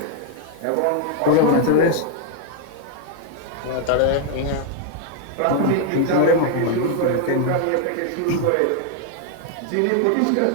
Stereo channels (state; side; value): different; both; correlation 0.01